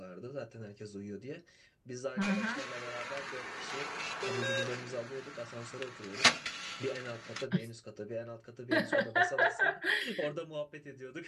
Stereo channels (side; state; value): both; identical; correlation 1.00